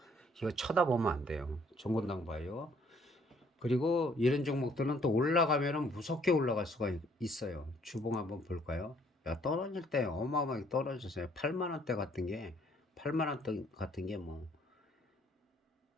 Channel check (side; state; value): both; normal; correlation 0.63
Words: 이거 쳐다보면 안 돼요. 정권당 바이오. 그리고 이런 종목들은 또 올라가면은 무섭게 올라갈 수가 있어요. 주봉 한번 볼까요? 야, 떨어질 때 어마어마하게 떨어졌어요. 8만 원대 같은 게, 8만 원대 같은 게 뭐